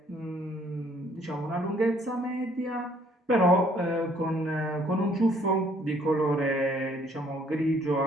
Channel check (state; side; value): normal; both; correlation 0.63